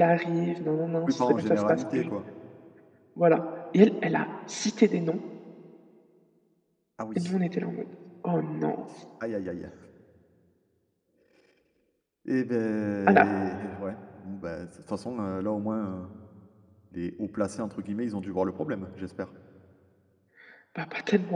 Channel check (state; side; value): identical; both; correlation 1.00